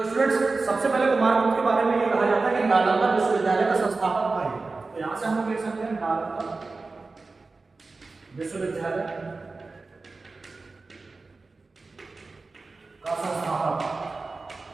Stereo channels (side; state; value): left; quieter; 3.8 dB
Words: स्टूडेंट्स सबसे पहले कुमारगुप्त के बारे में ये कहा जाता है कि नालंदा विश्वविद्यालय का संस्थापक था ये। तो यहां से हम लोग लिख सकते हैं नालंदा विश्वविद्यालय का संस्थापक।